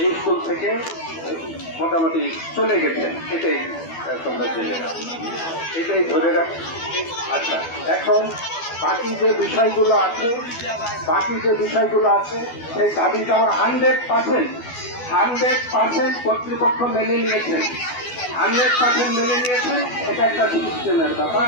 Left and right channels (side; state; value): right; late; 12 ms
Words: স্কুল থেকে মোটামুটি চলে গেছেন। এটাই তোমরা জেনে রাখো, এটাই ধরে রাখো। আচ্ছা, এখন বাকি যে বিষয়গুলো আছে সেই দাবিটা 100% কর্তৃপক্ষ মেনে নিয়েছেন। 100% মেনে নিয়েছেন। এটা একটা সিস্টেমের